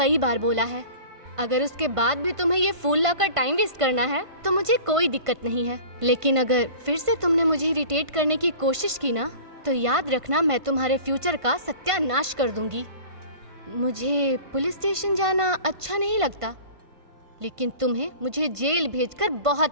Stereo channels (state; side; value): late; left; 1.5 ms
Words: बार बोला है, अगर उसके बाद भी तुम्हें ये फूल लाकर टाइम वेस्ट करना है तो मुझे कोई दिक्कत नहीं है। लेकिन अगर फिर से तुमने मुझे इरिटेट करने की कोशिश की ना, तो याद रखना मैं तुम्हारे फ्यूचर का सत्यानाश कर दूंगी। मुझे पुलिस स्टेशन जाना अच्छा नहीं लगता, लेकिन तुम्हें मुझे जेल भेजकर